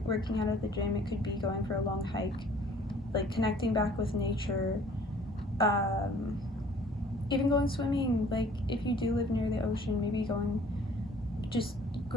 out at the gym. It could be going for a long hike, like connecting back with nature, even going swimming. Like if you do live near the ocean, maybe just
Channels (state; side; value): normal; both; correlation 0.54